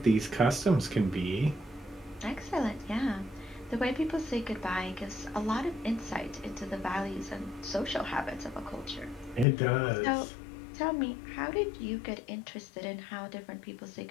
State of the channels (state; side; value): drops out; right; at 9.5 s